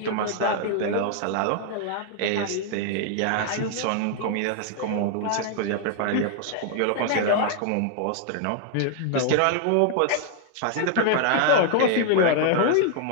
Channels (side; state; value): both; different; correlation 0.00